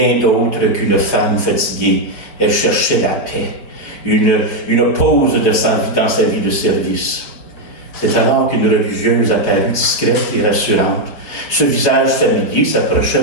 d'autre qu'une femme fatiguée. Elle cherchait la paix, une pause dans sa vie de service. C'est alors qu'une religieuse apparut discrète et rassurante, Ce visage familier s'approcha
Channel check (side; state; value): right; late; 4.5 ms